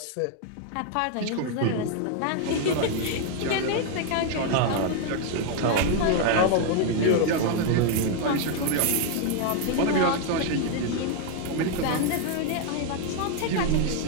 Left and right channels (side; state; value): both; different; correlation 0.00